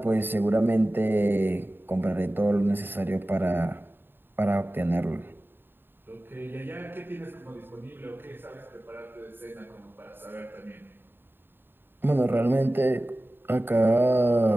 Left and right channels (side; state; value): left; late; 0.098 ms